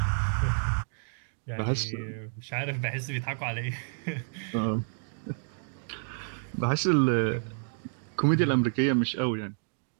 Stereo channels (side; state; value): left; silent; digital silence